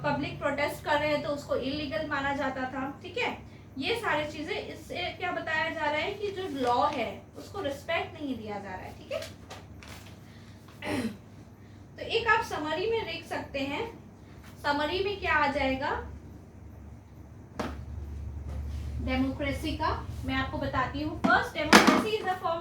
पब्लिक प्रोटेस्ट कर रहे हैं तो उसको इलीगल माना जाता था, ठीक है। ये सारी चीजें, इससे क्या बताया जा रहा है कि जो लॉ है उसको रिस्पेक्ट नहीं दिया जा रहा है, ठीक है। तो एक आप समरी में देख सकते हैं, समरी में क्या आ जाएगा डेमोक्रेसी का, मैं आपको बताती हूँ। First, democracy is a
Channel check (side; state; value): both; identical; correlation 1.00